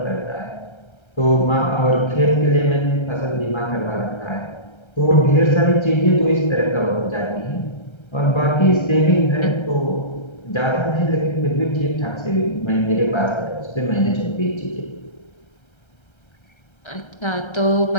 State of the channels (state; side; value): late; right; 1.3 ms